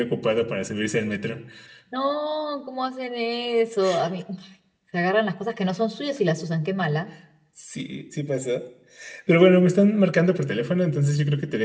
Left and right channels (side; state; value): both; identical; correlation 1.00